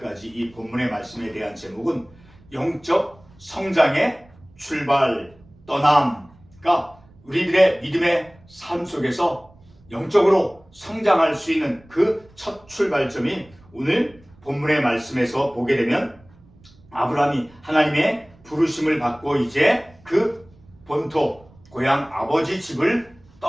이 본문의 말씀에 대한 제목은 영적 성장의 출발, 떠남. 그러니까 우리들의 믿음의 삶 속에서 영적으로 성장할 수 있는 그 첫 출발점이 오늘 본문의 말씀에서 보게 되면 아브라함이 하나님의 부르심을 받고 이제 그 본토, 고향 아버지 집을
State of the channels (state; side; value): noise; right; rumble, 27 dB below the sound